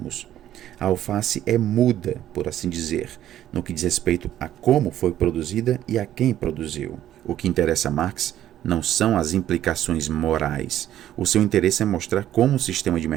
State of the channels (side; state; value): left; quieter; 12.1 dB